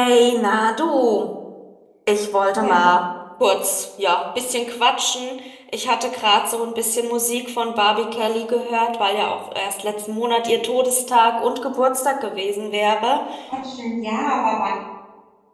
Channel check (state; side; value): identical; both; correlation 1.00